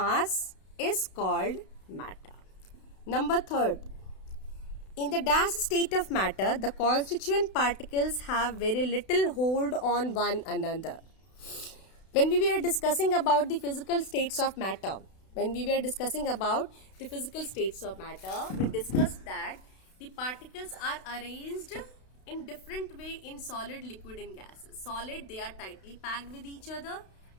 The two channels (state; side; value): late; right; 32 ms